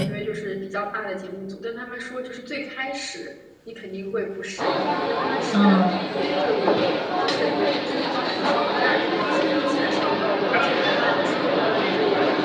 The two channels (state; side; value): identical; both; correlation 1.00